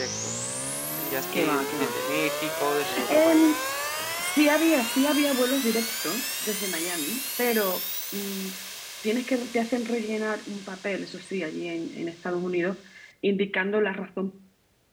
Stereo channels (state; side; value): identical; both; correlation 1.00